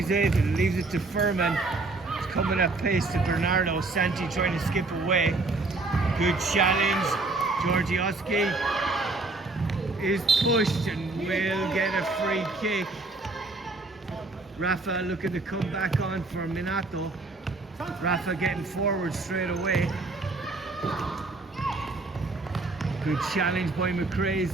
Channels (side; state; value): left; quieter; 3.3 dB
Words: it and leaves it to Furman. It's coming at pace to Bernardo. Santi trying to skip away. Good challenge. Georgioski is pushed and will get a free kick. Rafa looking to come back on for Minato. Rafa getting forward straight away. Good challenge by